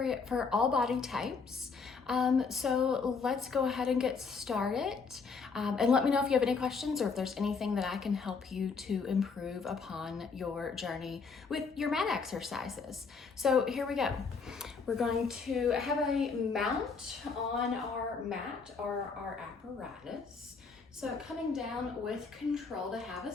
for all body types. So let's go ahead and get started, and let me know if you have any questions or if there's anything that I can help you to improve upon your journey with your mat exercises. So here we go. We're going to have a mount on our mat or our apparatus. So coming down with control to have a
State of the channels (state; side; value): quieter; right; 5.1 dB